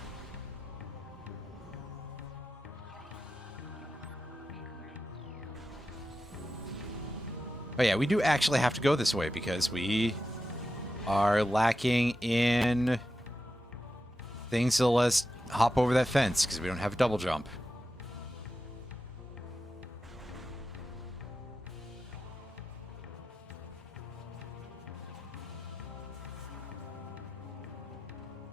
Oh yeah, we do actually have to go this way because we are lacking in things to let us hop over that fence because we don't have a double jump.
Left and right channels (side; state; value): both; normal; correlation 0.91